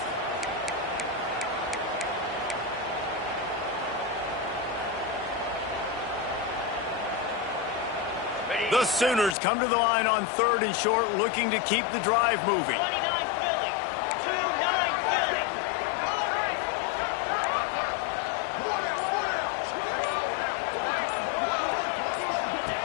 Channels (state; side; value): drops out; right; at 9.3 s